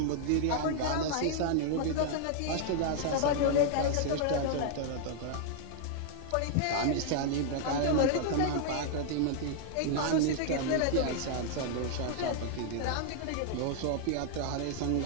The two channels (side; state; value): both; different; correlation -0.01